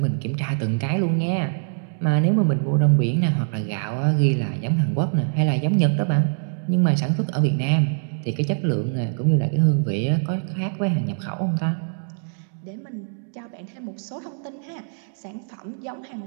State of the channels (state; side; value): silent; left; digital silence